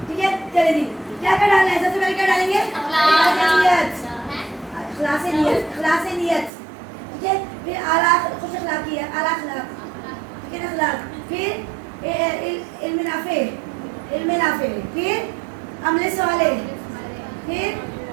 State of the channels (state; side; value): drops out; left; at 6.5 s